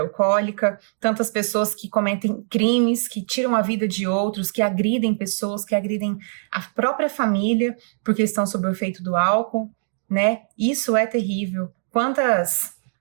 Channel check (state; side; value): silent; left; digital silence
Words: alcoólica, tantas pessoas que cometem crimes, que tiram a vida de outros, que agridem pessoas, que agridem a própria família, porque estão sob o efeito do álcool, né? Isso é terrível. Quantas